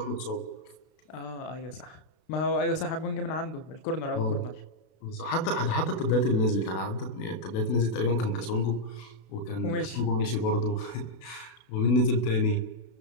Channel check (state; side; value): late; right; 32 ms